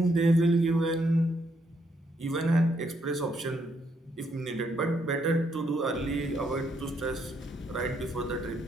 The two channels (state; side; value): normal; both; correlation 0.74